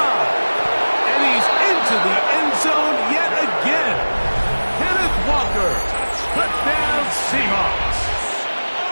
And he's into the end zone yet again. Kenneth Walker, touchdown Seahawks.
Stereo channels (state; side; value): inverted; both; correlation -1.00